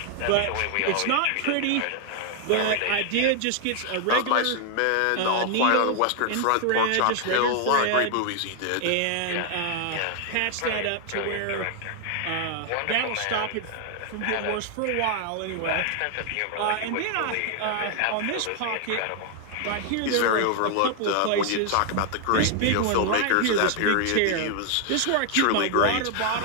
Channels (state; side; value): different; both; correlation 0.00